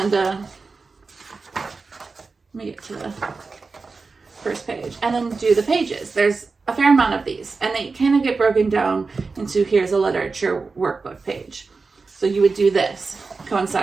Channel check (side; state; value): left; quieter; 4.3 dB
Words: let me get to the first page, and then do the pages. There's a fair amount of these, and they kind of get broken down into here's a literature workbook page. So you would do this,